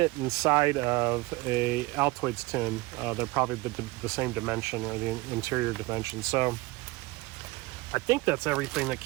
inside of a Altoids tin. They're probably the same dimension, or the interior dimension. So I think that's everything that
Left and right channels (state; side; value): quieter; left; 21.8 dB